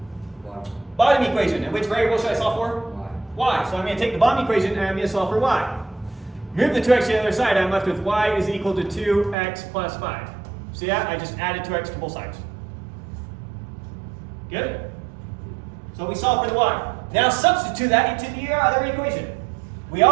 Bottom equation. And which variable should I solve for? Y. So I'm going to take the bottom equation and I'm going to solve for y. Move the 2x to the other side, I'm left with y is equal to 2x plus 5. See that? I just added 2x to both sides. Good? So we solve for the y. Now substitute that into the other equation. We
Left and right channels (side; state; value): left; drops out; at 9.3 s